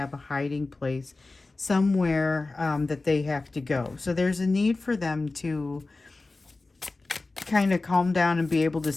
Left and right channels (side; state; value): right; quieter; 3.4 dB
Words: a hiding place somewhere that they have to go. So there's a need for them to kind of calm down and be able to